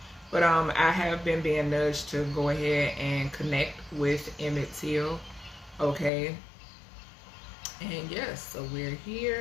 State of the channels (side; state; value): right; drops out; at 6.1 s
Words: But I have been being nudged to go ahead and connect with Emmett. Okay. And yes, so we're